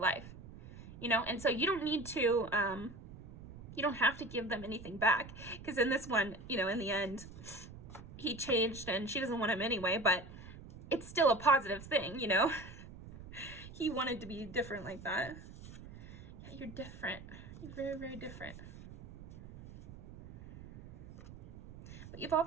you know, and so you don't need to, you don't have to give them anything back, because in this one, you know, in the end, he changed and she doesn't want him anyway, but it's still a positive thing, you know. He wanted to be different like that. Yeah, you're different. You're very, very different. But you've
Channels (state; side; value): noise; right; rumble, 15 dB below the sound